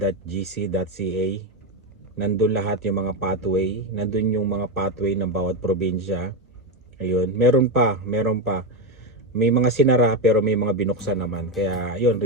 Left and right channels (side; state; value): both; normal; correlation 0.10